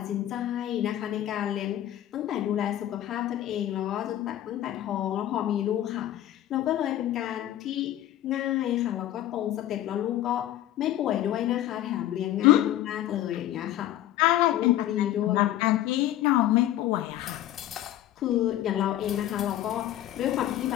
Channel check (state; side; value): quieter; right; 13.0 dB